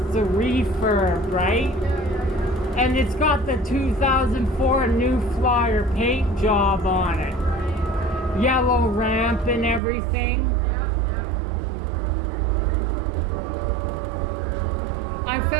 a refurb, right? Yeah. And it's got the 2004 New Flyer paint job on it. Right. Yellow ramp and everything. Yeah,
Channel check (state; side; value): drops out; left; at 9.8 s